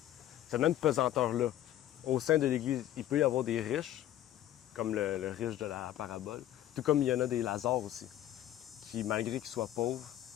pesanteur-là. Au sein de l'Église, il peut y avoir des riches, comme le riche de la parabole, tout comme il y en a des Lazare aussi, qui, malgré qu'ils soient pauvres,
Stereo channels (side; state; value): right; quieter; 12.6 dB